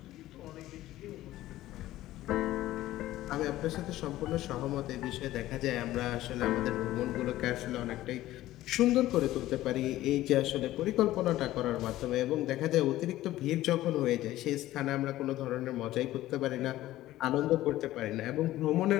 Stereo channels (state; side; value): quieter; right; 15.2 dB